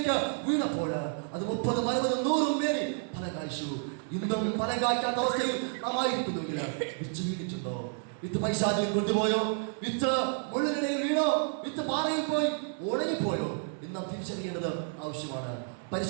വീണപ്പോൾ അത് 30, 60, 100 പേര് ഫലം കായ്ച്ചു. ഇന്നും ഫലം കായ്ക്കാത്ത അവസ്ഥയിൽ നാം ആയിരിക്കുന്നെങ്കിൽ വിത്ത് വീണിട്ടുണ്ടോ? വിത്ത് പൈശാചിൽ കൊണ്ടുപോയോ? വിത്ത് മുള്ളിനിടയിൽ വീണോ? വിത്ത് പാറയിൽ പോയി ഉണങ്ങിപ്പോയോ? എന്ന് നാം തിരിച്ചറിയേണ്ടത് ആവശ്യമാണ്.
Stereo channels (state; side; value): silent; left; 57 dB below the other